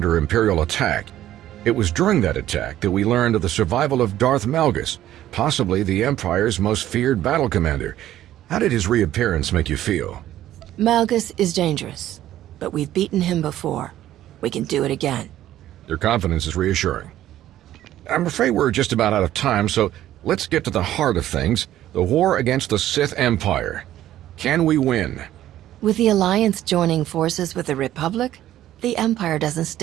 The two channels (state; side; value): quieter; left; 13.0 dB